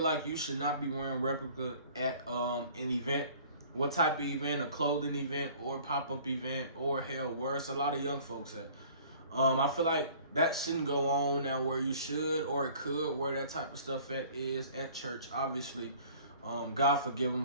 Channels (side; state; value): both; inverted; correlation -0.50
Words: you should not be wearing replica at an event. What type of event? A clothing event or pop-up event, or hell, where it's a lot of young folks at. I feel like that shouldn't go on now where you should, or it could, where that type of stuff is at church, obviously. God forgive